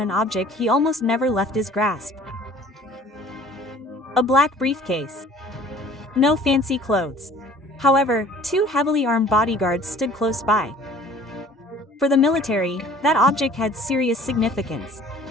object he almost never left his grasp. A black briefcase. No fancy clothes. However, two heavily armed bodyguards stood close by. For the military, that object had serious significance.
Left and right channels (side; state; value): both; normal; correlation 0.50